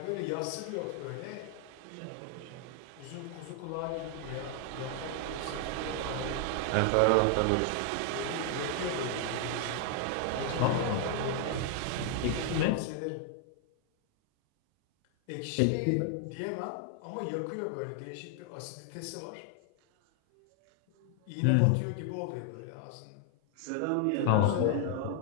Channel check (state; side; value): different; both; correlation 0.00